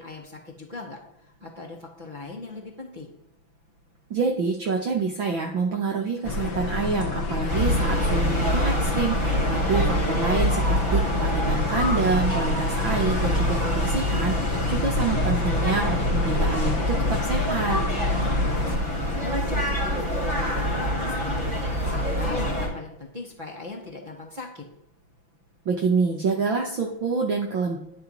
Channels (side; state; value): left; late; 6.0 ms